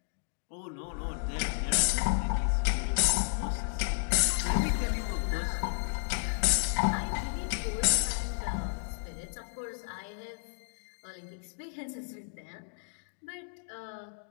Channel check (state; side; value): silent; right; digital silence